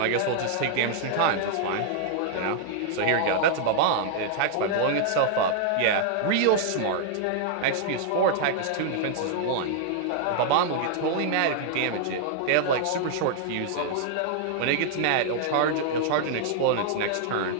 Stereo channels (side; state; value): both; different; correlation -0.01